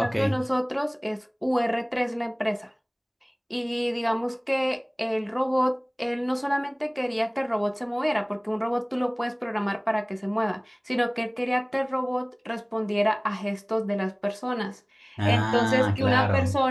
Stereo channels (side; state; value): both; identical; correlation 1.00